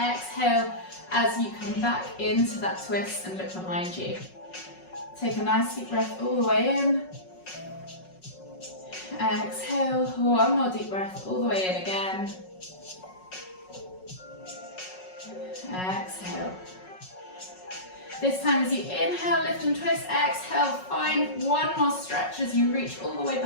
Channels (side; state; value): right; late; 5.4 ms